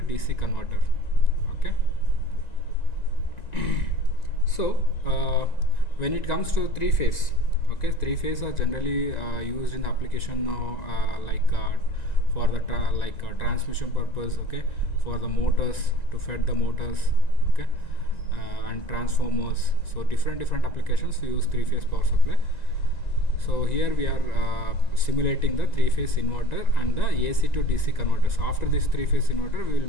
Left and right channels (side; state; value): right; late; 1.9 ms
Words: DC converter. Okay. So when it comes to three-phase, okay, three-phase are generally used in the application for the transmission purpose, okay, for the motors, to feed the motors, okay, and transformers. So different applications use three-phase power supply. So here we are simulating the three-phase inverter and the AC to DC converters. After this three-phase inverter, we will